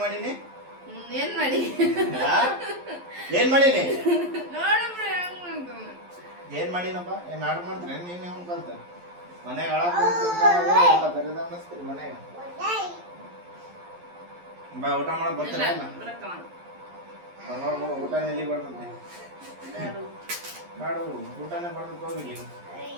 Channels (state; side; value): late; left; 11 ms